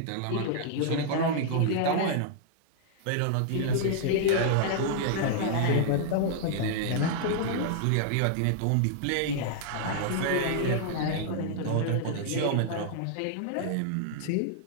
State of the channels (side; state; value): both; different; correlation -0.01